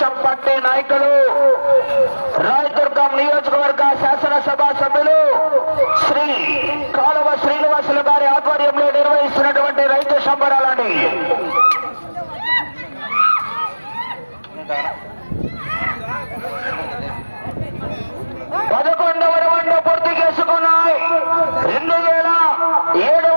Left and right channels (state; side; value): inverted; both; correlation -1.00